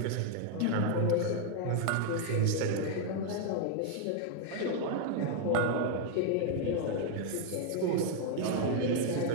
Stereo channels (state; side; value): different; both; correlation 0.00